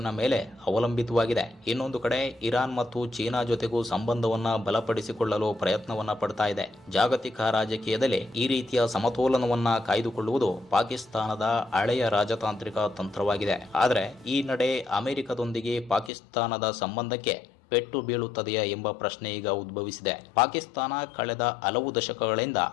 ಮೇಲೆ ಅವಲಂಬಿತವಾಗಿದೆ. ಇನ್ನೊಂದು ಕಡೆ ಇರಾನ್ ಮತ್ತು ಚೀನಾ ಜೊತೆಗೂ ಸಂಬಂಧವನ್ನ ಬಲಪಡಿಸಿಕೊಳ್ಳಲು ಪ್ರಯತ್ನವನ್ನ ಪಡ್ತಾ ಇದೆ. ಜಾಗತಿಕ ರಾಜಕೀಯದಲ್ಲಿ ಈ ರೀತಿಯ ಸಮತೋಲನವನ್ನ ಕಾಯ್ದುಕೊಳ್ಳುವುದು ಪಾಕಿಸ್ತಾನದ ಹಳೆಯ ರಾಜತಾಂತ್ರಿಕ ತಂತ್ರವಾಗಿದೆ. ಆದರೆ ಈ ನಡೆ ಅಮೆರಿಕದೊಂದಿಗೆ ಪಾಕಿಸ್ತಾನದ ಸಂಬಂಧಕ್ಕೆ ಪೆಟ್ಟು ಬೀಳುತ್ತದೆಯಾ ಎಂಬ ಪ್ರಶ್ನೆ ಈಗ ಉದ್ಭವಿಸಿದೆ. ಪಾಕಿಸ್ತಾನ ಕಳೆದ ಹಲವು ದಶಕಗಳಿಂದ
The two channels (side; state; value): right; drops out; at 16.1 s